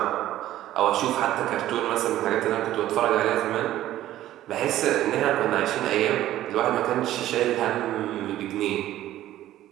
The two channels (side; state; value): left; quieter; 13.7 dB